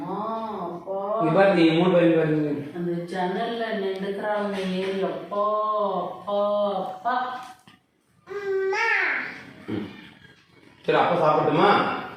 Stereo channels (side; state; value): both; identical; correlation 1.00